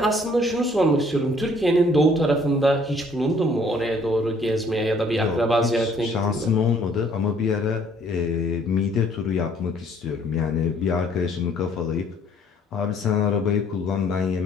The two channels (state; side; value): normal; both; correlation 0.60